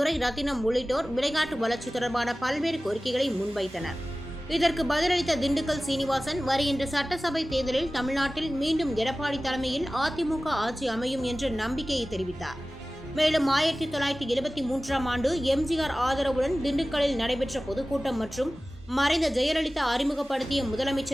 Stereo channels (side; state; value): both; normal; correlation 0.97